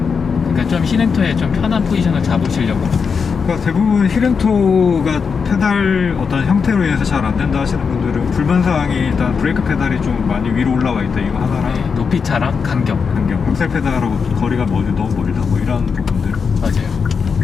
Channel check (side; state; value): right; quieter; 5.7 dB